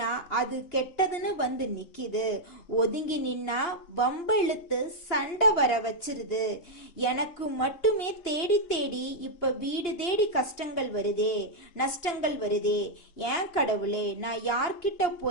அது கெட்டதுன்னு வந்து நிக்குது. ஒதுங்கி நின்னா வம்ப இழுத்து சண்டை வர வச்சிருது. எனக்கு மட்டுமே தேடி தேடி இப்ப வீடு தேடி கஷ்டங்கள் வருதே, நஷ்டங்கள் வருதே. ஏன் கடவுளே, நான் யார்கிட்ட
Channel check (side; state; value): right; late; 2.9 ms